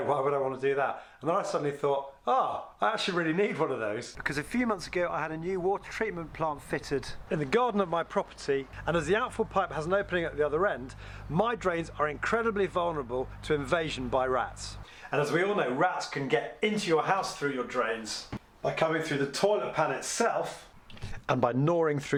why would I want to do that? And then I suddenly thought, I actually really need one of those. Because a few months ago I had a new water treatment plant fitted in the garden of my property, and as the outfall pipe has an opening at the other end, my drains are incredibly vulnerable to invasion by rats. And as we all know, rats can get into your house through your drains by coming through the toilet pan itself, and by gnawing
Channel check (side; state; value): both; identical; correlation 1.00